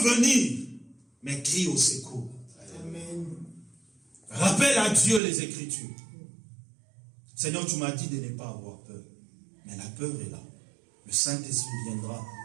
venir, mais crie au secours. Amen. Rappelle à Dieu les Écritures. Seigneur, tu m'as dit de ne pas avoir peur. Mais la peur est là. Le Saint-Esprit viendra.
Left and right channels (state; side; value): drops out; left; at 5.2 s